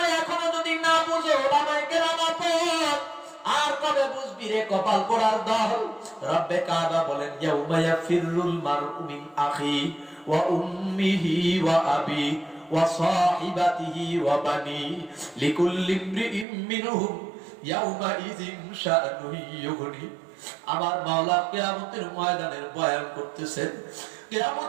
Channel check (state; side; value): drops out; left; at 16.4 s